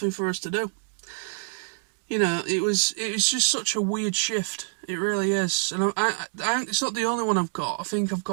for us to do. It was just such a weird shift. It really is. And it's not the only one I've got. I think I've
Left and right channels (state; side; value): silent; left; digital silence